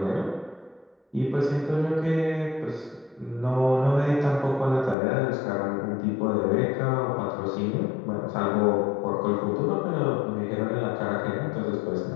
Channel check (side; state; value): right; drops out; at 5.0 s